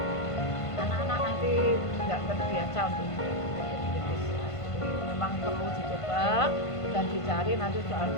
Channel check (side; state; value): right; late; 1.5 ms